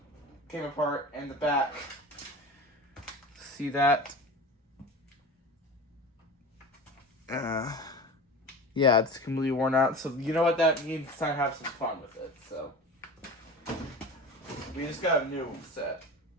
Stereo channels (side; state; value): both; normal; correlation 0.33